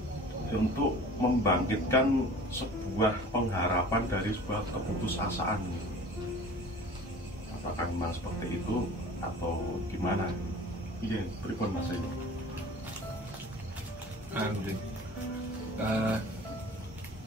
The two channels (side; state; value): both; normal; correlation 0.44